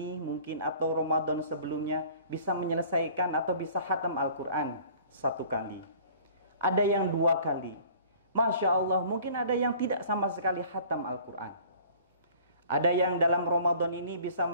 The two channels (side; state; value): both; inverted; correlation -0.50